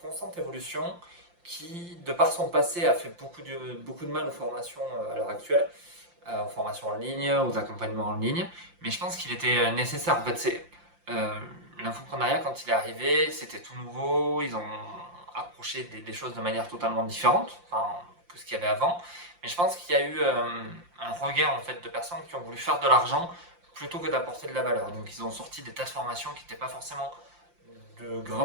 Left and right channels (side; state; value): left; late; 5.7 ms